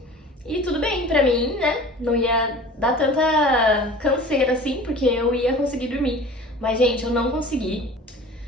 e tudo bem pra mim, né? Não ia dar tanta canseira assim, porque eu ia conseguir dormir. Mas, gente, eu não consegui.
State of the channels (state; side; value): normal; both; correlation 0.41